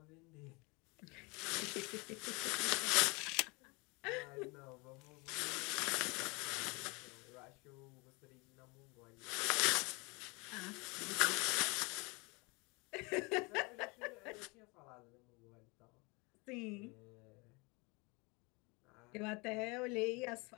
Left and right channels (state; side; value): quieter; right; 28.0 dB